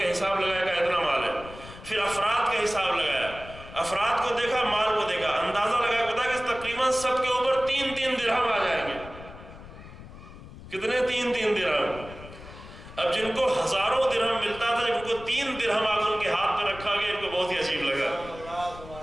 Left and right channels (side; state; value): left; noise; rumble, 16 dB below the sound